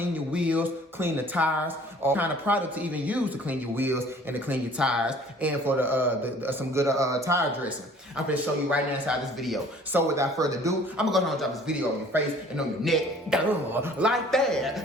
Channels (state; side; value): normal; both; correlation 0.52